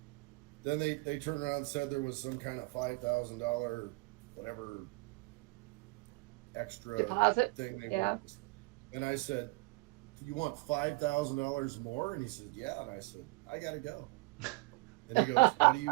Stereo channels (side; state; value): left; quieter; 24.9 dB